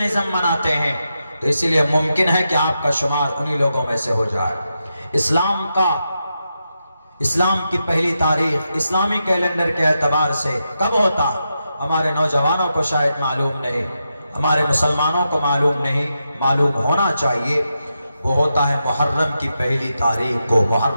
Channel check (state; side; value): inverted; both; correlation -0.87